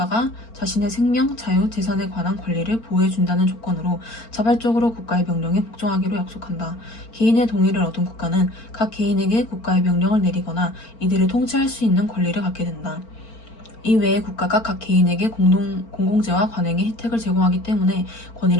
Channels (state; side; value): late; right; 4.4 ms